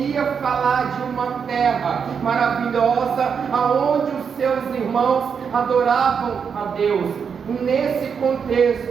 falar de uma terra maravilhosa, aonde os seus irmãos adoravam a Deus. Nesse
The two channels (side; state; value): left; quieter; 6.6 dB